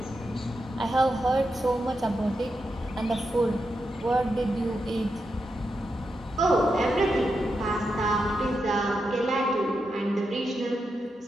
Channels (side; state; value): both; normal; correlation 0.86